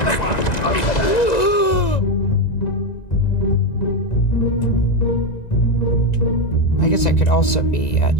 one! I guess I could also be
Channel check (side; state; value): right; late; 1.9 ms